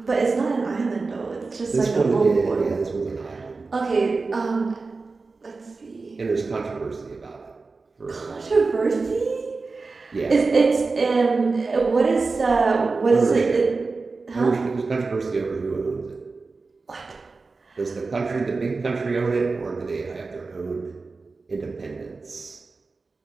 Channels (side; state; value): left; quieter; 4.0 dB